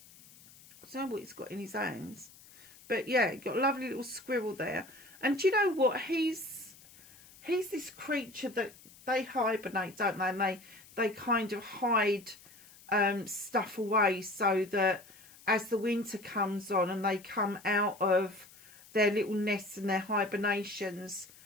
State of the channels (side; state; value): left; noise; hiss, 23 dB below the sound